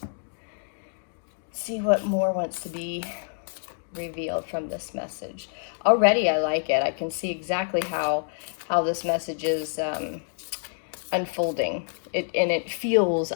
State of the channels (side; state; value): right; silent; digital silence